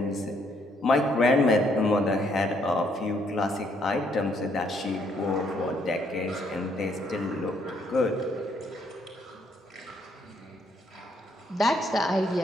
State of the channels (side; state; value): both; normal; correlation 0.70